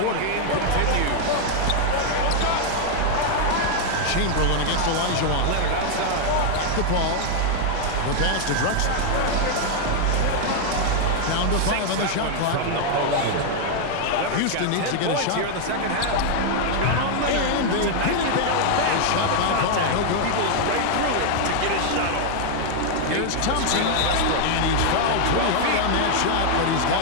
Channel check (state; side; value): different; both; correlation 0.00